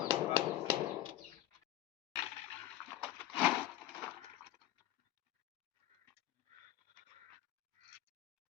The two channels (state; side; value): quieter; right; 13.9 dB